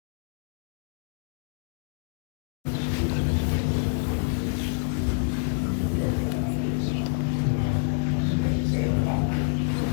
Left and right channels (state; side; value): silent; right; 60 dB below the other